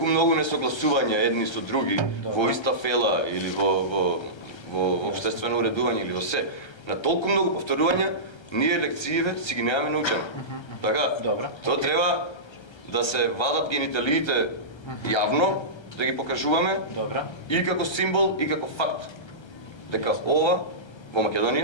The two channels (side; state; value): right; late; 1.3 ms